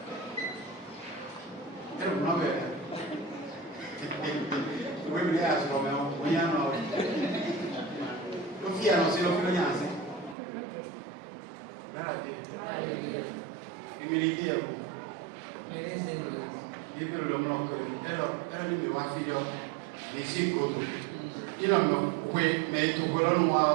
Oui, mais il y a ce moment, il y a un autre. Le fils a annoncé le fils. Humilité à vous. Il peut le nom que elle me va faire des sécours. Il a me mais tout le monde a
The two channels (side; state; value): left; drops out; at 10.4 s